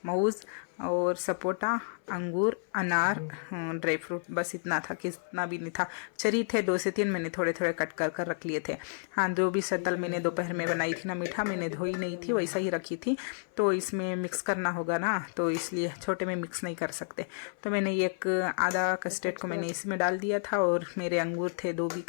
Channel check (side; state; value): right; silent; 56 dB below the other